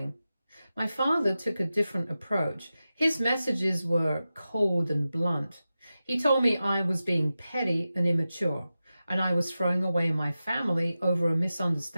My father took a different approach. His messages were cold and blunt. He told me I was being petty and immature, and I was throwing away my family over a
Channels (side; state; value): both; inverted; correlation -0.93